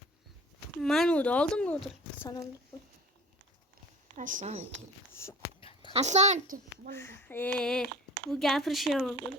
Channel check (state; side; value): normal; both; correlation 0.43